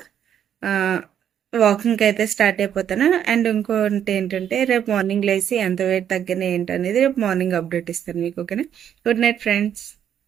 వాకింగ్కి అయితే స్టార్ట్ అయిపోతాను. అండ్ ఇంకోటి ఏంటంటే రేపు మార్నింగ్ లేసి ఎంత వెయిట్ తగ్గిన ఏంటనేది రేపు మార్నింగ్ అప్డేట్ ఇస్తాను మీకు. ఓకేనా, గుడ్ నైట్ ఫ్రెండ్స్.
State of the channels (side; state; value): left; quieter; 9.4 dB